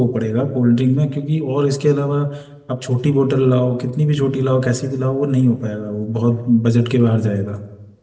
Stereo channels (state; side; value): identical; both; correlation 1.00